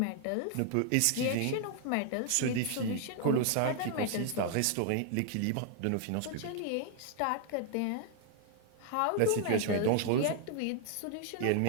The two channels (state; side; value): different; both; correlation 0.00